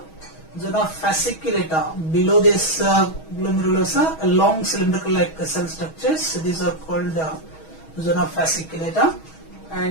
Zona fasciculata, below this glomerulosa, a long cylindrical-like cell structures. These are called zona fasciculata.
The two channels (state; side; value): late; right; 6.3 ms